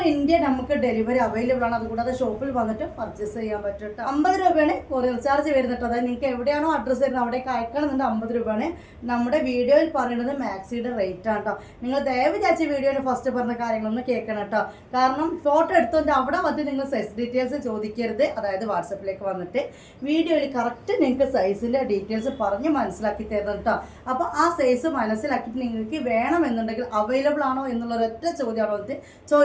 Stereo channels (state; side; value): identical; both; correlation 1.00